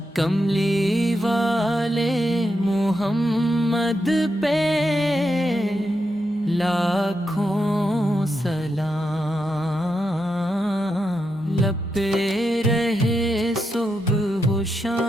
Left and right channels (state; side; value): normal; both; correlation 0.85